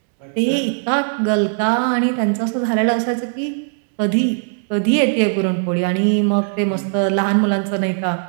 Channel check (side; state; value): left; silent; digital silence